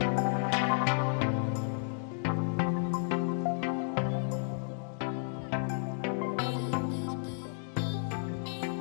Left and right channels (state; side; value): silent; right; digital silence